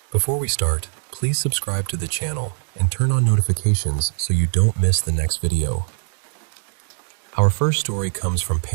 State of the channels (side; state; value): left; silent; digital silence